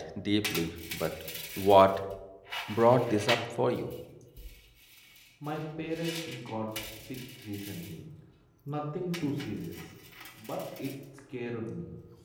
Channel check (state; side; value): identical; both; correlation 1.00